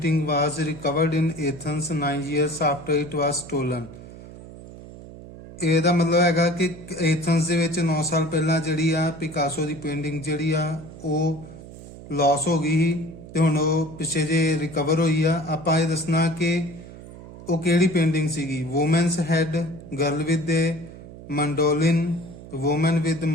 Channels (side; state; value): right; noise; hum, 16 dB below the sound